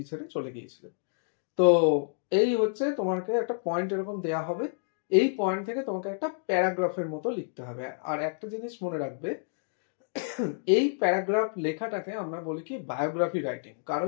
ছেড়ে চলে গিয়েছিলেন। তো এই হচ্ছে তোমাকে একটা পয়েন্ট এরকম দেয়া হবে, এই পয়েন্ট থেকে তোমাকে একটা প্যারাগ্রাফের মতো লিখতে হবে। আর একটা জিনিস মনে রাখবে, এই প্যারাগ্রাফ লেখাটাকে আমরা বলি কি বায়োগ্রাফি রাইটিং,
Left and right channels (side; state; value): right; silent; digital silence